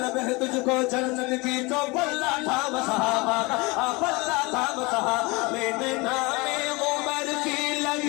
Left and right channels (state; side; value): quieter; right; 25.4 dB